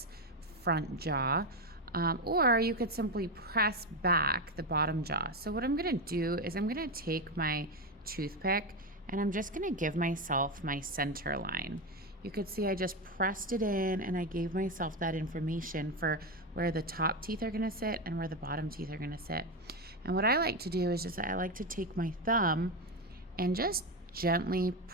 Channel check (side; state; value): both; normal; correlation 0.12